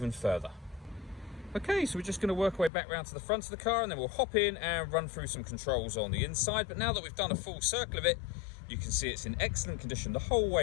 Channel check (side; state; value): right; drops out; at 2.7 s